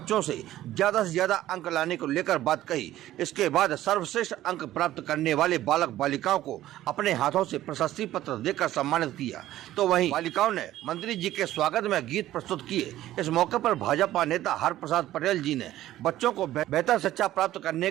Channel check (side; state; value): left; quieter; 14.1 dB